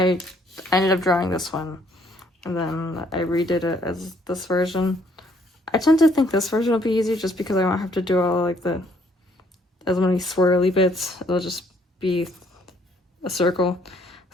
ended up drawing this one, and then I redid it as this version. I tend to think this version will be easier just because I won't have to do all like as many swirly bits. It'll just be a circle,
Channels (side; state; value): both; normal; correlation 0.65